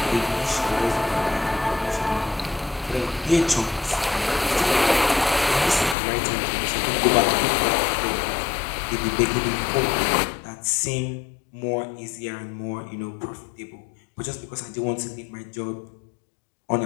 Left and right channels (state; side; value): drops out; right; at 6.0 s